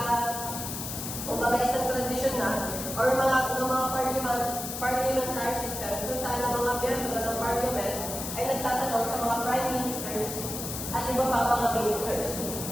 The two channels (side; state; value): left; noise; hiss, 6 dB below the sound